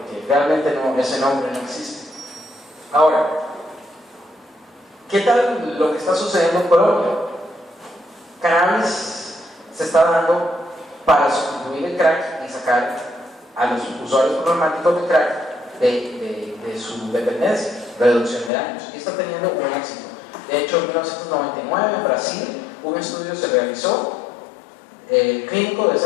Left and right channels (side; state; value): right; drops out; at 18.5 s